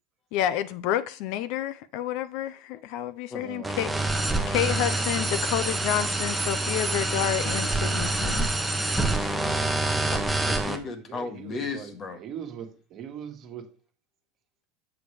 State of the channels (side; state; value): both; normal; correlation 0.57